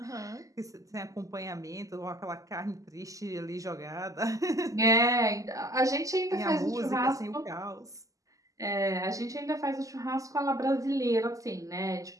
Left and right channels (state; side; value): late; left; 0.16 ms